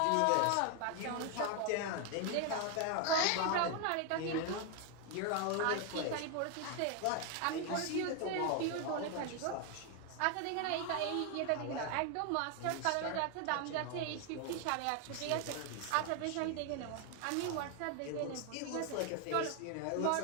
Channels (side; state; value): both; different; correlation 0.00